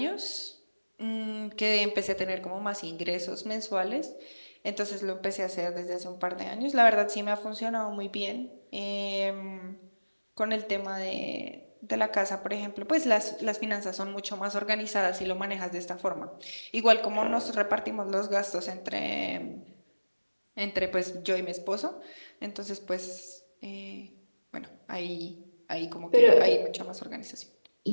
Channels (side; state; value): both; inverted; correlation -1.00